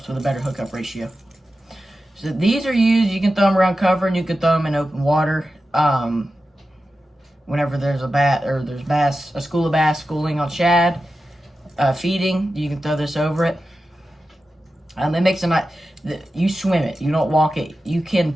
with a better hookup ratio. So these are used, you can throw them around cover, and you can throw them in open water. Whenever there's a school of bass schooling on shad, feeding, you can throw this over it. It makes a nice, you swim it, you don't walk it. You can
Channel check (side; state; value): both; normal; correlation 0.92